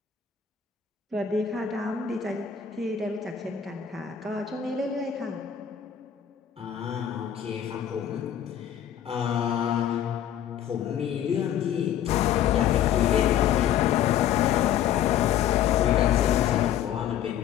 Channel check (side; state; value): right; quieter; 9.8 dB